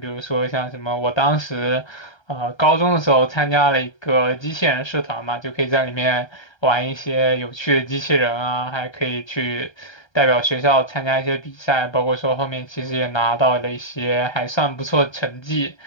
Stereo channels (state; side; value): late; right; 1.3 ms